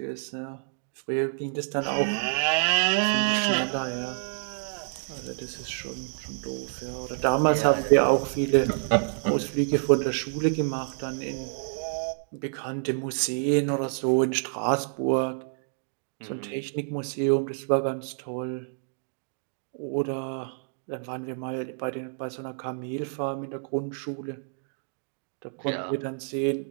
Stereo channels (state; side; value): silent; left; digital silence